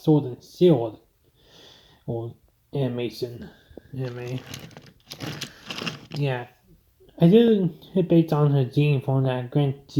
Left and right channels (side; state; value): both; identical; correlation 1.00